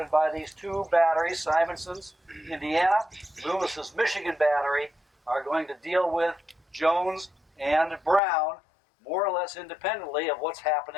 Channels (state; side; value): drops out; right; at 8.2 s